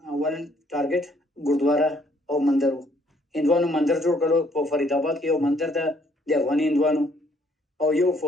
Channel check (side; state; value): both; normal; correlation 0.65